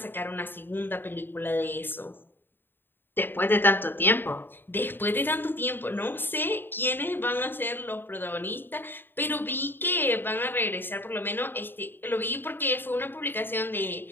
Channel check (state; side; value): late; right; 0.097 ms